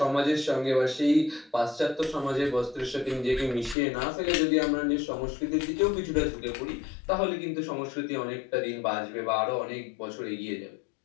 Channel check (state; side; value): drops out; right; at 3.8 s